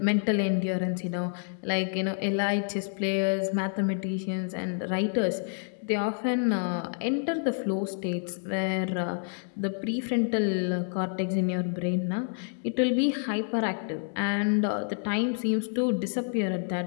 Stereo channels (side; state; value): right; silent; 59 dB below the other